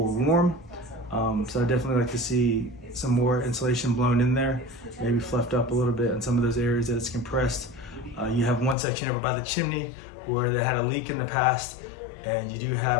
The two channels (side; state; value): right; drops out; at 8.8 s